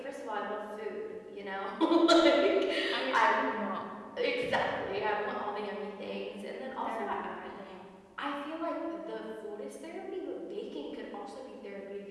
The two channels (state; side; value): identical; both; correlation 1.00